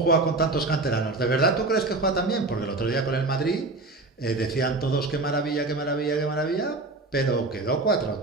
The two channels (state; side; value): quieter; left; 3.2 dB